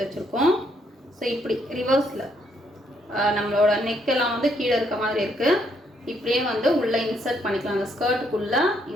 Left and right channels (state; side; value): normal; both; correlation 0.72